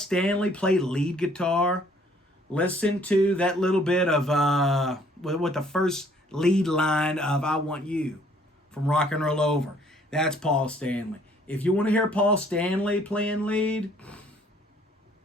play lead guitar, listen to that little bit of, with the first lead line of I Want You. from Rock and Roll Over. That's Paul Stanley. If you want to hear Paul Stanley playing lead,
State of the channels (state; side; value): normal; both; correlation 0.60